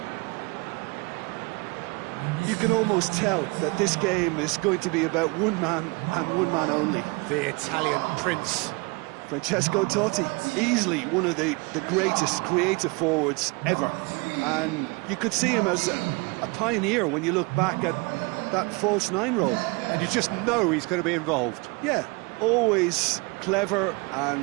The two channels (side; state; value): left; quieter; 28.2 dB